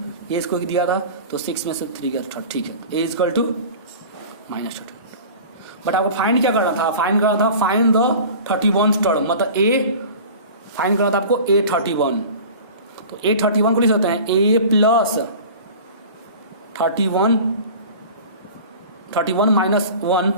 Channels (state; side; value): inverted; both; correlation -0.39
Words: ये इसको दिया था तो 6 में से 3 गया 3, ठीक है A equal to minus 32। But आपको फाइंड क्या करना था, फाइंड करना था फाइंड द 31st टर्म, मतलब A फाइंड करना था आपको A31, तो A31 को लिख सकते हैं A प्लस 31 माइनस